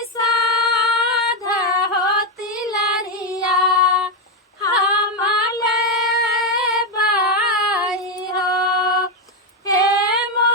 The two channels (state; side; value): normal; both; correlation 0.06